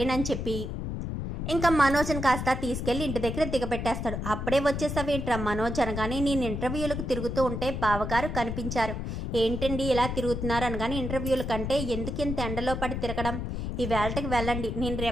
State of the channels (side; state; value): left; noise; rumble, 4 dB below the sound